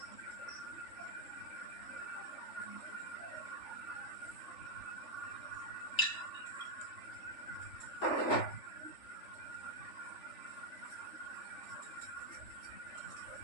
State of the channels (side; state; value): right; late; 3.4 ms